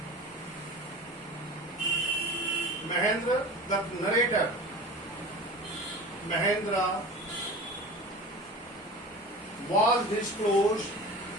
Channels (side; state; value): both; normal; correlation 0.35